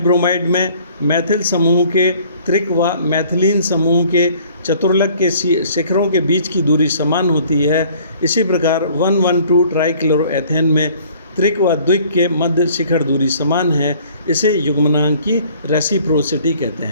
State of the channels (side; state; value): both; inverted; correlation -0.55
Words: ब्रोमाइड में मैथिल समूह के त्रिक व मैथिलीन समूह के चतुर्लक के शिखरों के बीच की दूरी समान होती है। इसी प्रकार 112 ट्राइक्लोरोएथेन में त्रिक व द्विक के मध्य शिखर दूरी समान है। इसे युग्मनांक की रेसिप्रोसिटी कहते